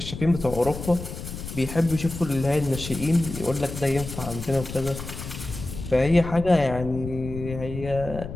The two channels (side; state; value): left; noise; rumble, 9 dB below the sound